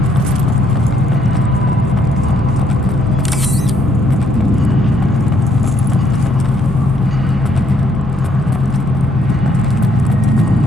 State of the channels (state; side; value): normal; both; correlation 0.70